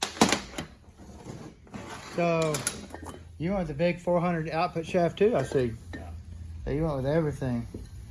So, you went with the big 400 output shaft too, I see. So you went with everything.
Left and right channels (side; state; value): both; identical; correlation 1.00